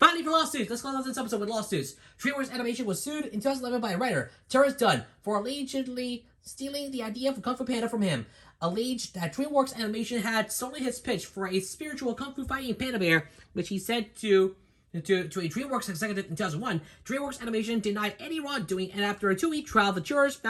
for lawsuits. Let's close out this episode with lawsuits. DreamWorks Animation was sued in 2011 by a writer, Terrence Dunn, for allegedly stealing the idea for Kung Fu Panda from him. Alleged that DreamWorks Animation had stolen his pitch for a spiritual Kung Fu fighting panda bear, which he said to a DreamWorks executive in 2001. DreamWorks Animation denied any wrongdoing, and after a 2-week trial, the jurors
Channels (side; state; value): both; identical; correlation 1.00